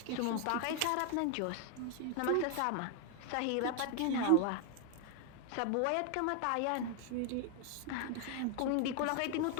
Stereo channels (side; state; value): both; different; correlation 0.00